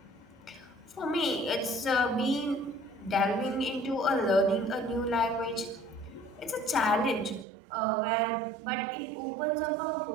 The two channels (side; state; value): left; drops out; at 7.5 s